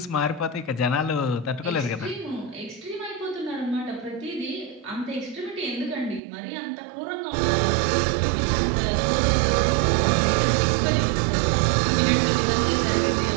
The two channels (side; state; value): left; drops out; at 6.2 s